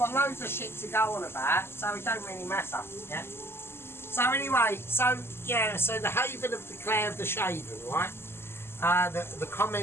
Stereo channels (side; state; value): right; late; 0.12 ms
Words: loads of shit to go on about, so it don't really matter, yeah? So anyway, so yeah, so the Haven of the Claire of the Shaven, right? The